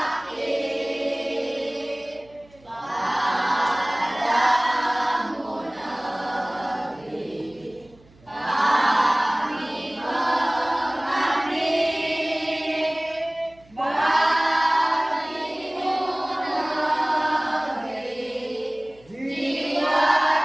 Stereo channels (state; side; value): noise; right; hum, 28 dB below the sound